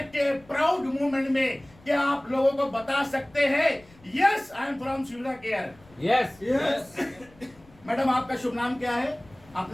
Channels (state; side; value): noise; left; rumble, 27 dB below the sound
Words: के प्राउड मूवमेंट में क्या आप लोगों को बता सकते हैं यस आई एम फ्रॉम सुविधा केयर? Yes yes. मैडम आपका शुभ नाम क्या है?